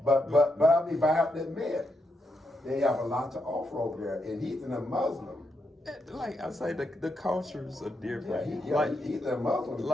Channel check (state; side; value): normal; both; correlation 0.82